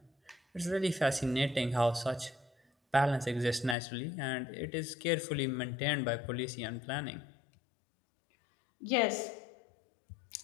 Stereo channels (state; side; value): drops out; right; at 3.8 s